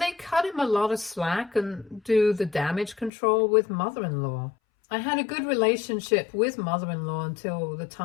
cut him a lot of slack and do the damage control with mother-in-law. I had a good relationship with mother-in-law until the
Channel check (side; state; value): right; drops out; at 3.1 s